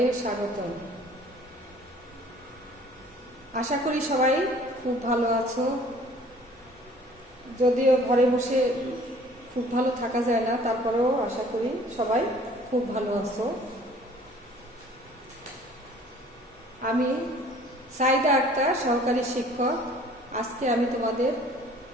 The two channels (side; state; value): both; normal; correlation 0.53